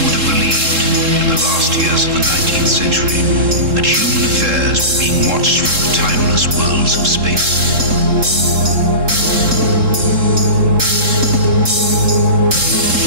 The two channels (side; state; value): left; late; 3.7 ms